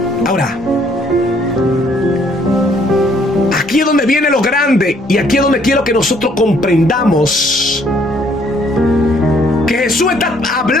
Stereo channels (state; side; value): normal; both; correlation 0.64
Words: Ahora, aquí es donde viene lo grande, y aquí es donde quiero que nosotros comprendamos que Jesús está